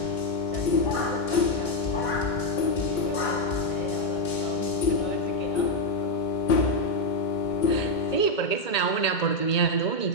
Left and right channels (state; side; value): late; right; 2.2 ms